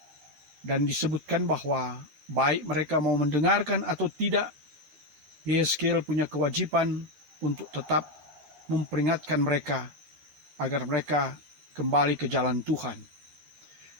Dan disebutkan bahwa baik mereka mau mendengarkan atau tidak, Yehezkiel punya kewajiban untuk tetap memperingatkan mereka agar mereka kembali ke jalan Tuhan.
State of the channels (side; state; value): left; late; 12 ms